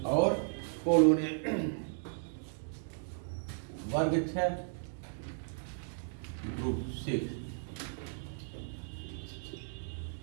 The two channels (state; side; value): silent; left; digital silence